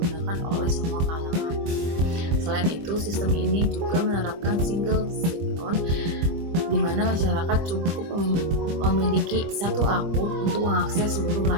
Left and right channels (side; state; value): left; late; 24 ms